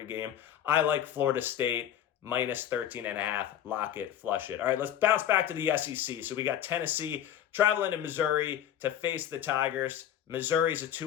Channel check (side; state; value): right; quieter; 10.5 dB